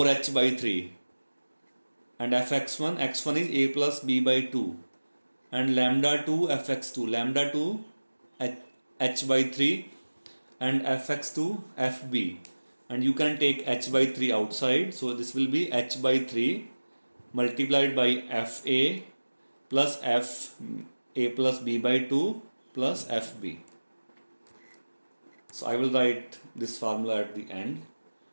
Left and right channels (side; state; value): both; inverted; correlation -1.00